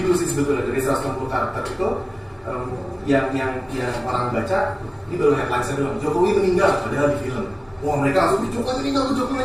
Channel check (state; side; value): identical; both; correlation 1.00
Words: dulu sih sebetulnya dari 160 karakter itu. Yang orang baca ini baru headline-nya doang. Jokowi meninggal padahal di film. Wah mereka langsung Jokowi